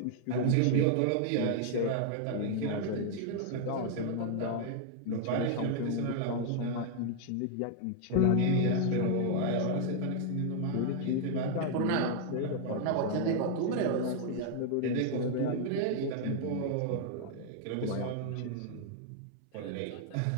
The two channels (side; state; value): both; different; correlation 0.00